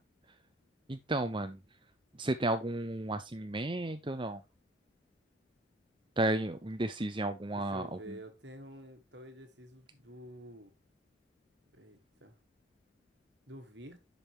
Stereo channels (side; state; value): both; normal; correlation 0.50